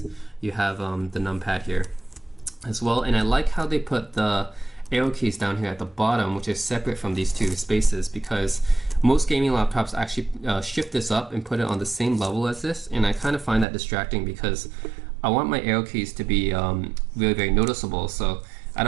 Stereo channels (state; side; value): drops out; left; at 13.7 s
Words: You have the numpad here as well. And I like how they put the arrow keys down here at the bottom, which is separate from these 2 spaces, because most gaming laptops actually shift this up and put it on the same level as this, and I kind of find that distracting because I want my arrow keys to be really very noticeable. So I